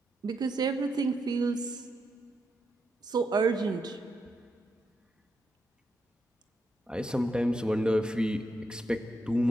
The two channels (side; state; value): both; normal; correlation 0.82